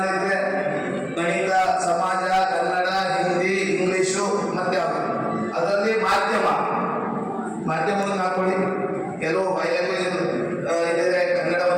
ಇದೆ, ಗಣಿತ, ಸಮಾಜ, ಕನ್ನಡ, ಹಿಂದಿ, ಇಂಗ್ಲಿಷು, ಮತ್ತೆ ಅದರಲ್ಲಿ ಮಾಧ್ಯಮವನ್ನು ಹಾಕೊಳ್ಳಿ. ಕೆಲವು ಬಯಲುಗಳು ಇದೆ, ಕನ್ನಡ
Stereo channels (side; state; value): both; identical; correlation 1.00